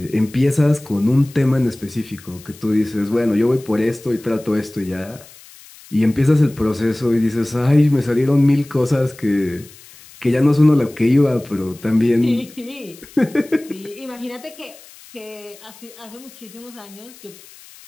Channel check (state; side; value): noise; left; hiss, 22 dB below the sound